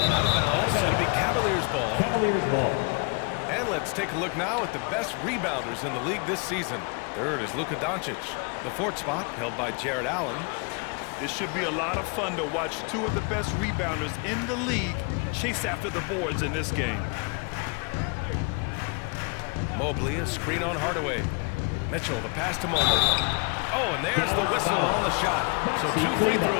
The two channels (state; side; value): quieter; right; 33.6 dB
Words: Out of bounds. It'll be Cavaliers ball. Caverliers ball. And let's take a look now at the best rebounders in the league this season. 3rd is Luka Doncic. The 4th spot held by Jared Allen. It should be a lot of fun to watch 2 of the best rebounders in the league chase after the boards in this game. Mobley, a screen on Hardaway. Mitchell, the pass to Mobley. Oh, and there's the whistle on the shot. So 2 free